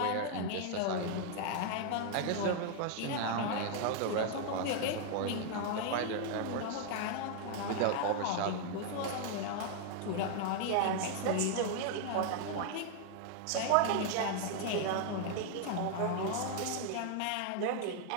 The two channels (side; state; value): both; different; correlation 0.00